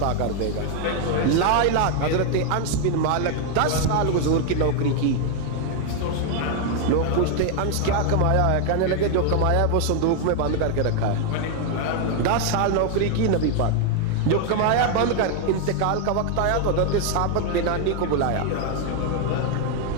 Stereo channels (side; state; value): both; different; correlation 0.01